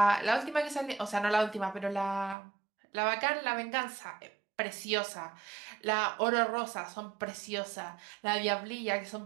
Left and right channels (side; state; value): left; drops out; at 2.4 s